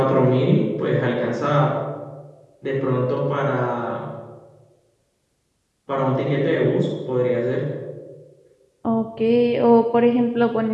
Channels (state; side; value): identical; both; correlation 1.00